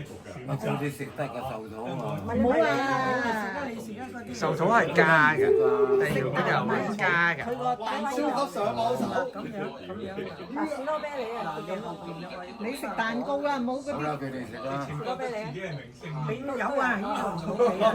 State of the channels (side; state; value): both; identical; correlation 1.00